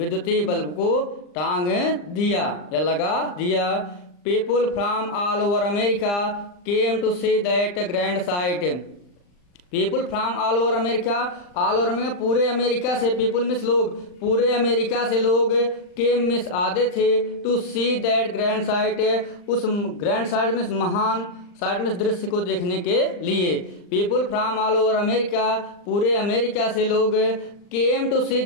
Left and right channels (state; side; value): late; right; 39 ms